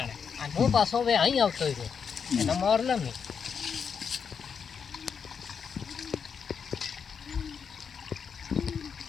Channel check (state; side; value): quieter; right; 6.5 dB